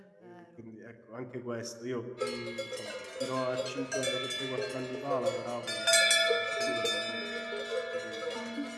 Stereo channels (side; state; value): both; identical; correlation 1.00